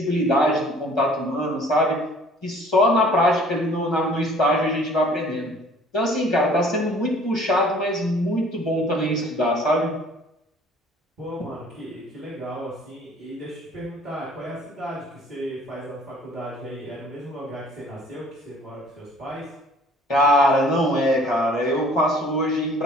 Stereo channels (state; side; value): normal; both; correlation 0.53